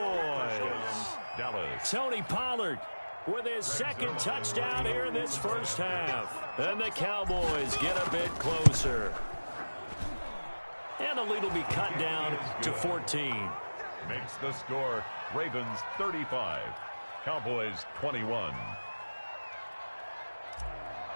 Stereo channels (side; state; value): both; inverted; correlation -1.00